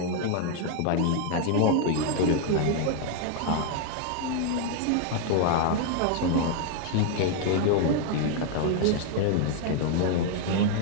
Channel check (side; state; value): both; different; correlation 0.00